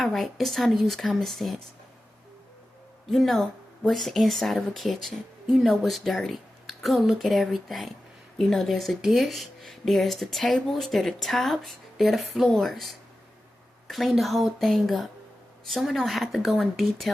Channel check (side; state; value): both; normal; correlation 0.93